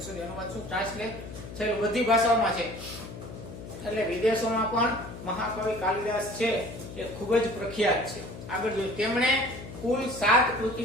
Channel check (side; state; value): left; noise; hum, 12 dB below the sound